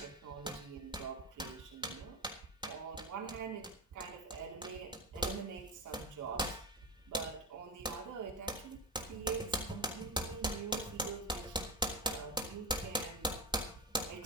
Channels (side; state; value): both; normal; correlation 0.19